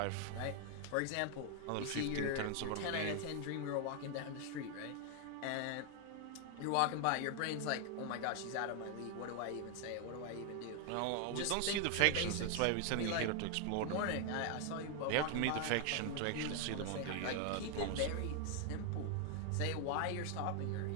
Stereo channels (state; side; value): different; both; correlation 0.00